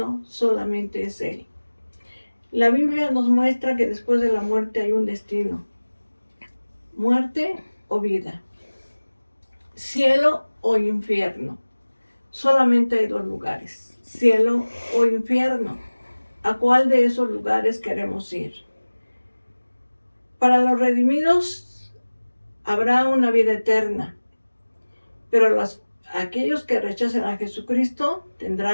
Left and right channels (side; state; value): both; inverted; correlation -1.00